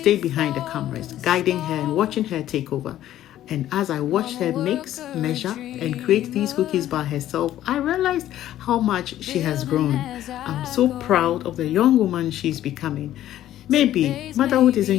behind the cameras, guiding her and watching her take over. And as I watched her mix, measure, and create these cookies by herself, I realized how much she has grown. I'm so proud of the young woman she's becoming. Maybe motherhood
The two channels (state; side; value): quieter; right; 12.8 dB